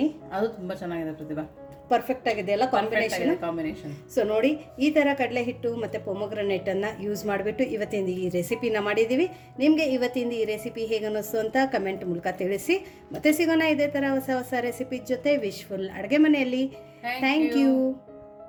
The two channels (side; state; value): both; identical; correlation 1.00